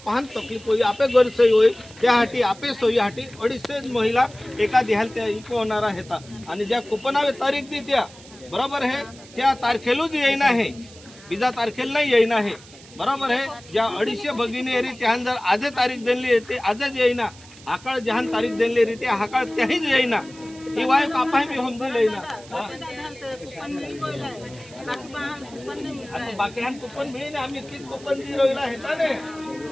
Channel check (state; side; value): noise; right; hiss, 21 dB below the sound